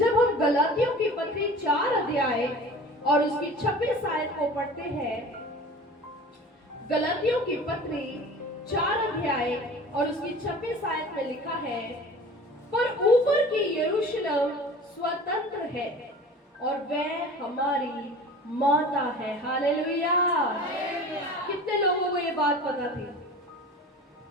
हम गलातियों की पत्री 4 अध्याय और उसकी 26 आयत को पढ़ते हैं। गलातियों की पत्री 4 अध्याय और उसकी 26 आयत में लिखा है, पर ऊपर की यरूशलेम स्वतंत्र है और वह हमारी माता है। हालेलुया। कितने लोगों को ये बात पता थी?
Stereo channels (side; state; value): both; normal; correlation 0.40